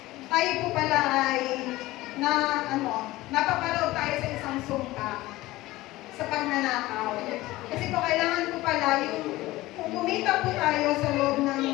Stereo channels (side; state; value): right; quieter; 18.2 dB